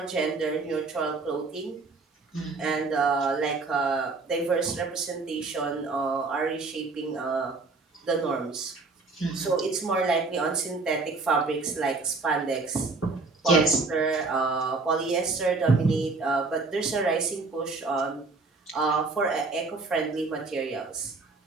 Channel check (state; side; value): quieter; left; 3.8 dB